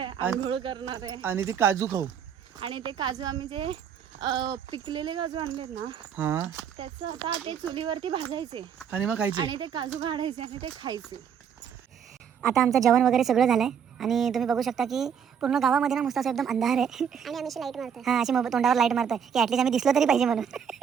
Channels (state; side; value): quieter; left; 7.8 dB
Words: आंघोळ करणार आहे. आणि ते काजू खाऊ. आणि ते काजू आम्ही जे पिकलेले काजू आणलेत ना, हा त्याचं आता ते चुलीवरती भाजायचे आणि मग खायचे. आणि ते काजू काढायचे आणि ते खायचे. आता आमचं जेवण वगैरे सगळं झालंय आणि तुम्ही बघू शकता की पूर्ण गावामध्ये ना मस्त असं एकदम अंधार आहे. आणि आम्ही लाईट मारतोय. हां अशी तोंडावर लाईट मारतोय की ॲटलीस्ट आम्ही दिसलो तरी पाहिजे म्हणून.